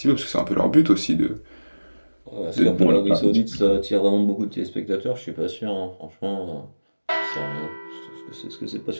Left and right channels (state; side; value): inverted; both; correlation -1.00